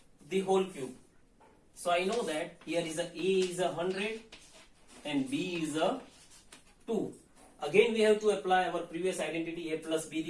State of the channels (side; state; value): both; identical; correlation 1.00